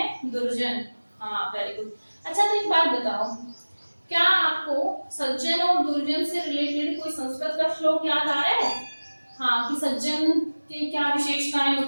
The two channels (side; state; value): both; inverted; correlation -1.00